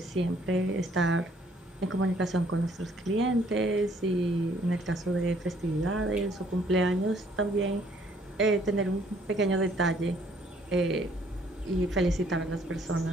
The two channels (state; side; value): normal; both; correlation 0.63